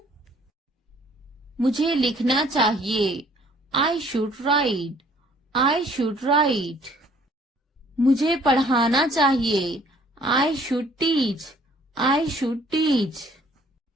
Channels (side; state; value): both; normal; correlation 0.59